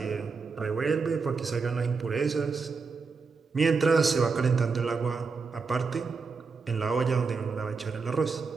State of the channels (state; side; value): quieter; left; 4.8 dB